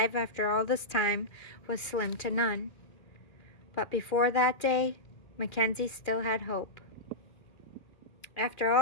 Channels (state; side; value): late; right; 2.4 ms